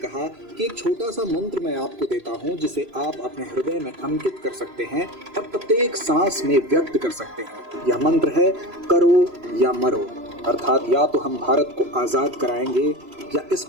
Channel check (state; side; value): late; left; 3.0 ms